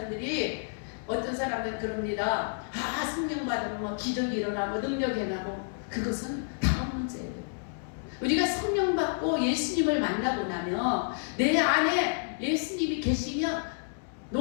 어떤 사람들은 그럽니다. 아, 성령 받으면 뭐 기적이 일어나고 능력이 일어나고 그것은 다음 문제예요. 우리가 성령 받고 예수님을 만나고 나면 내 안에 예수님이 계시면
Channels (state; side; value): silent; right; digital silence